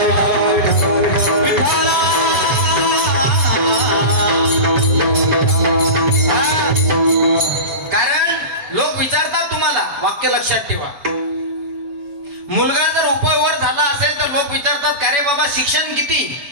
कारण लोक विचारतात तुम्हाला, वाक्य लक्षात ठेवा. मुलगा जर उपवर झाला असेल तर लोक विचारतात का रे बाबा शिक्षण किती.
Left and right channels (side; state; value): left; late; 7.0 ms